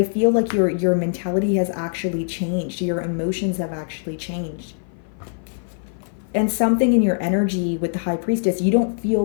feel like your mentality has actually changed. Your emotions have actually changed. And something in your energy with the high priestess, you don't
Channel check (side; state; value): right; silent; 55 dB below the other